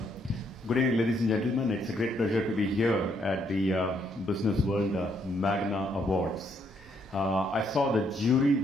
Good evening, ladies and gentlemen. It's a great pleasure to be here at the Business World Magna Awards. I saw the jury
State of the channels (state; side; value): normal; both; correlation 0.72